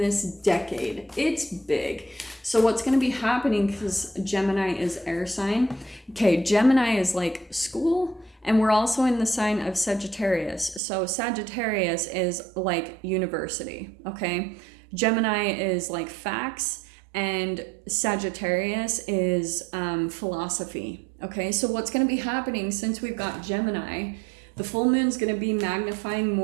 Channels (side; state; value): left; drops out; at 10.8 s